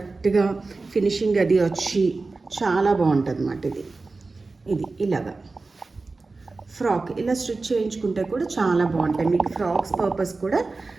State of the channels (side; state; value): left; quieter; 3.7 dB